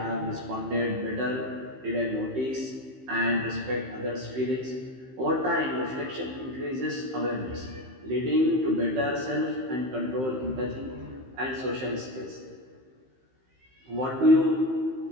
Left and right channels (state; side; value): late; left; 15 ms